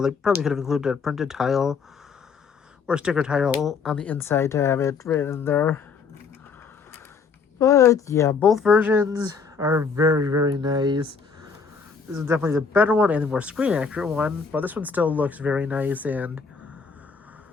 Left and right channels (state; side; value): quieter; right; 5.4 dB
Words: They probably could have included a printed tile or sticker tile on the inside to have it written in there. But yeah, both versions are very, very nice. This is definitely the better one and the more screen accurate one, but this one still looks very nice and